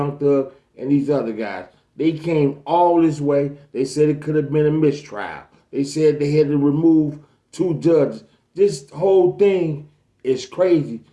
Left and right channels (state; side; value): identical; both; correlation 1.00